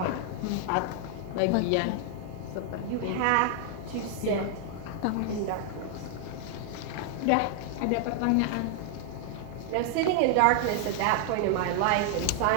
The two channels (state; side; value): different; both; correlation 0.00